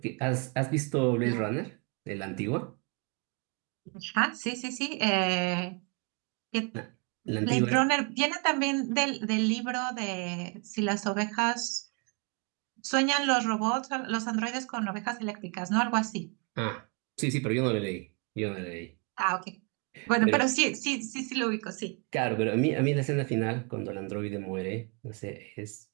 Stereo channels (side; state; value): left; quieter; 34.0 dB